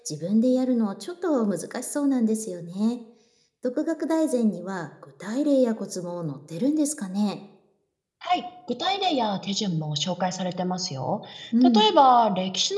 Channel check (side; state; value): both; identical; correlation 1.00